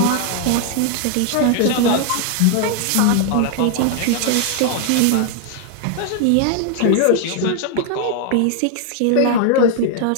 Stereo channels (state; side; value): different; both; correlation 0.00